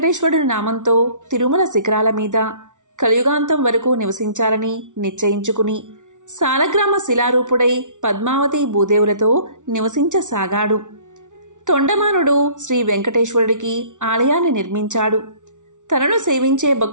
నామంతో తిరుమల శిఖరాల మీద కలియుగాంతం వరకు నివసించాలని నిశ్చయించుకుని సాలగ్రామ శిలారూపుడై పద్మావతి భూదేవులతో నివసించసాగాడు. తొండమానుడు శ్రీ వెంకటేశ్వరుడికి ఆలయాన్ని నిర్మించాడు. తనను సేవించే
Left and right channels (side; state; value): left; late; 0.86 ms